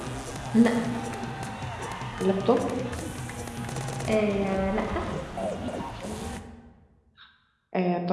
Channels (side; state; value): both; identical; correlation 1.00